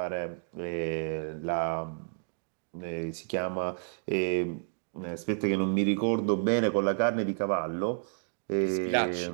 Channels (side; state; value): left; silent; digital silence